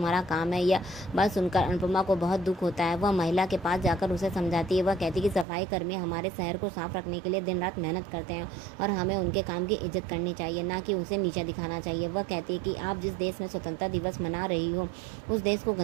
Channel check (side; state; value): left; drops out; at 5.5 s